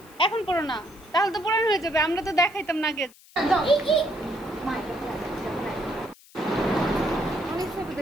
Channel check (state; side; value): noise; left; hiss, 25 dB below the sound